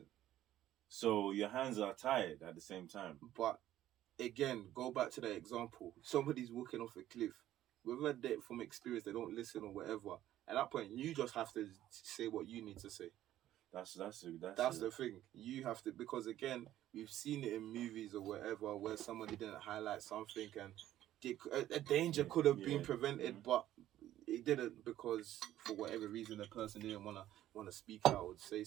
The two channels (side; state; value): left; quieter; 13.1 dB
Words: So your hands are tied at the same time. But again, go back to that example. Somebody's walking off a cliff. Whether they from experience they don't listen or whatever. At that point, you just have to say what you need to say. That's the thing. You have to, because again, we've seen it in movies or whatever where somebody didn't highlight something and a danger could have been prevented, but it didn't because for whatever reason the person didn't wanna speak out or say